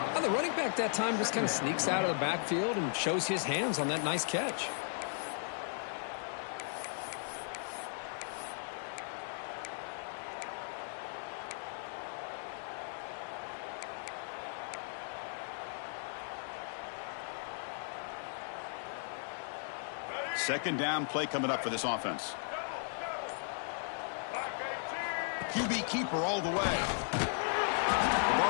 Now the running back that time just kind of sneaks out of the backfield and shows his hands on that nice catch. Second down play coming up for this offense. QB keeper all the way. The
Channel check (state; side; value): silent; right; digital silence